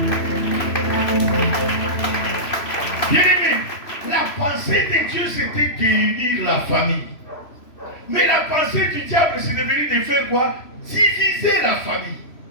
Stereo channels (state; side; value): late; right; 3.0 ms